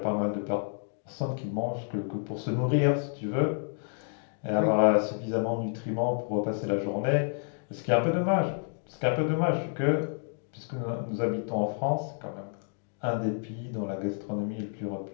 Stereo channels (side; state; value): right; silent; 56 dB below the other